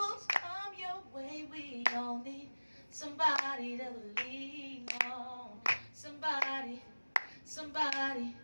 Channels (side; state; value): both; inverted; correlation -1.00